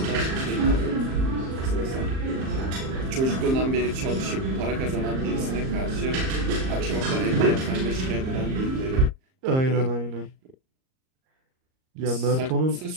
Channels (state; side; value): late; left; 38 ms